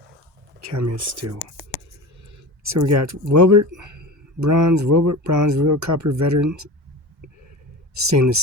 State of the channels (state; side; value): normal; both; correlation 0.31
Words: Cameo Steel. So we got Wilbert Bronze, Real Copper Veteran Stainless